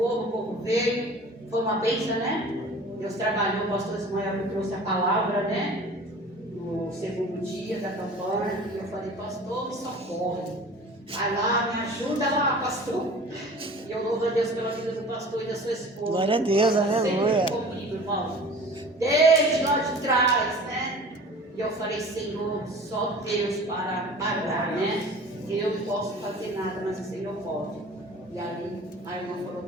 veio, foi uma bênção, né? Deus trabalhou, o pastor Ismael me trouxe a palavra, né? No segundo dia da campanha, e eu falei, pastor, me socorre. Vai lá, me ajuda lá, pastor. E eu louvo a Deus pela vida do pastor e da sua esposa. Glória a Deus, aleluia. Sempre comigo, irmão. Desde lá de trás, né? E eu falei, Senhor, só Deus para parar, né? Eu não posso fazer nada, mas o Senhor pode. E ali, a irmã falou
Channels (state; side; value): normal; both; correlation 0.42